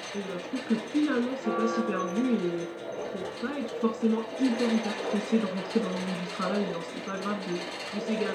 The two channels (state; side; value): identical; both; correlation 1.00